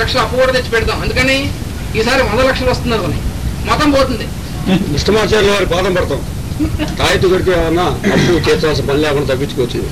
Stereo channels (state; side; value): identical; both; correlation 1.00